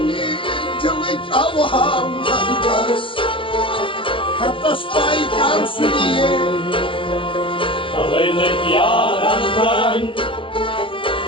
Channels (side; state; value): right; late; 0.25 ms